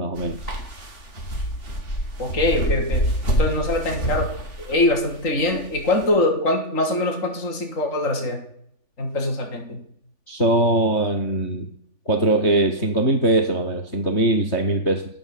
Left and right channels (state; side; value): late; right; 3.5 ms